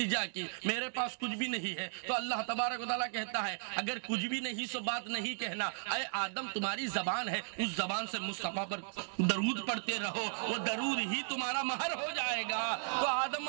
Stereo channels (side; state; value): left; silent; digital silence